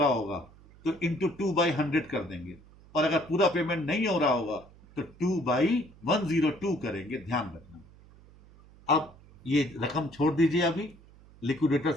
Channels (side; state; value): right; noise; hum, 24 dB below the sound